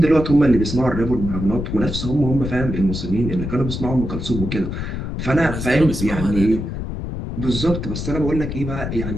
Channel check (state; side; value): noise; left; rumble, 5 dB below the sound